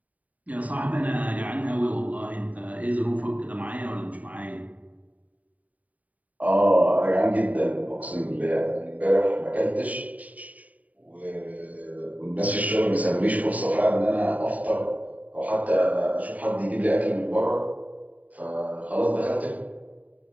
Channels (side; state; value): left; late; 0.072 ms